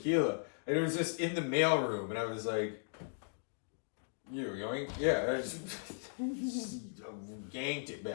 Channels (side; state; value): right; silent; digital silence